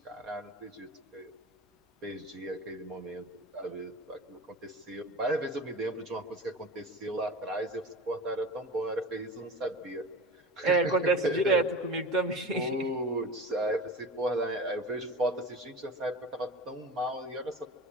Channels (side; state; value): both; normal; correlation 0.33